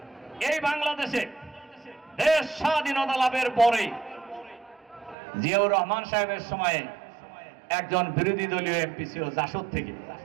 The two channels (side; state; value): left; drops out; at 5.2 s